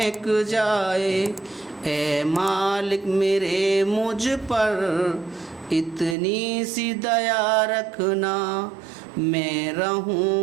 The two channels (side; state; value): left; drops out; at 6.2 s